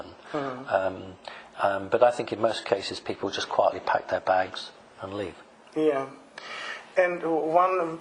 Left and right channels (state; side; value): identical; both; correlation 1.00